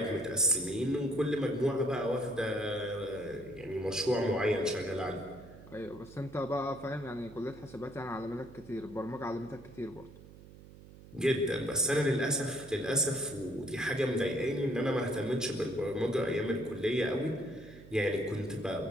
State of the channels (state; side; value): noise; right; hum, 18 dB below the sound